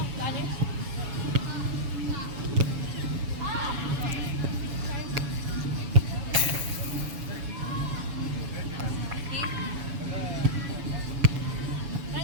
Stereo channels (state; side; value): late; left; 7.1 ms